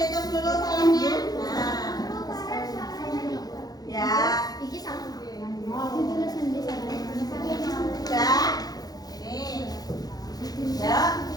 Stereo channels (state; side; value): late; right; 0.19 ms